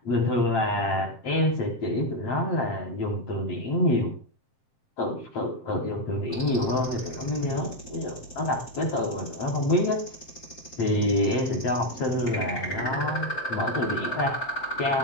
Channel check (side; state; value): right; late; 7.7 ms